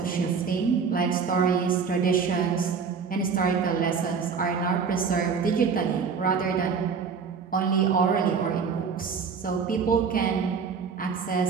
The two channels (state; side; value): quieter; left; 5.8 dB